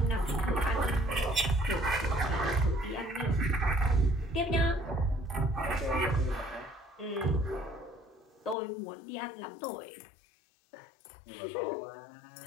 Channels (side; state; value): right; drops out; at 8.6 s